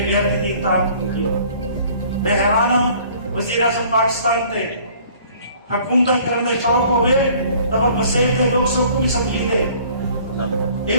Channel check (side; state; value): both; inverted; correlation -0.54